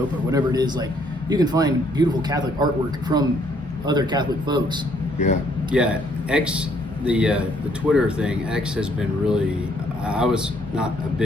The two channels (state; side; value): normal; both; correlation 0.67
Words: whatever it is. Like you can find beautiful Catholic artwork from other Catholic folks. Yeah. Yeah, X, the Twitter thing. X has been really. I was not a